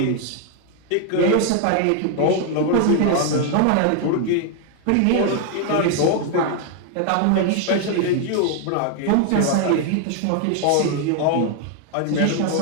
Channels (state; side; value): different; both; correlation 0.00